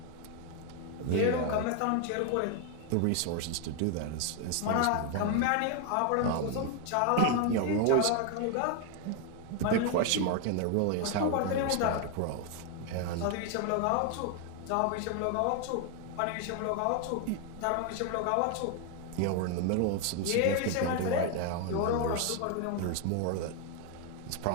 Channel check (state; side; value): different; both; correlation 0.01